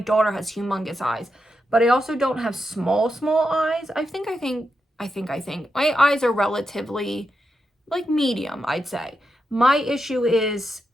has humongous eyes, but I also don't have small eyes. I think my eyes are relatively like medium, I'd say. My issue is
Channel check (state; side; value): normal; both; correlation 0.86